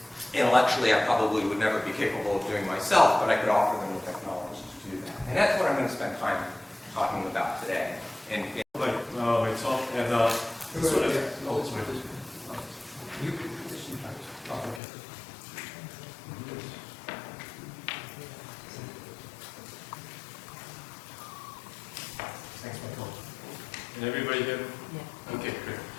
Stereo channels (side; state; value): right; drops out; at 14.8 s